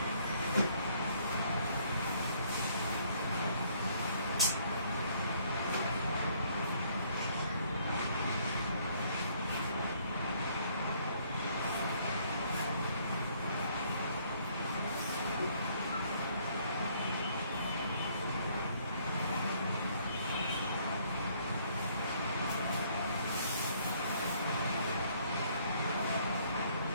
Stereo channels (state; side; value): inverted; both; correlation -0.65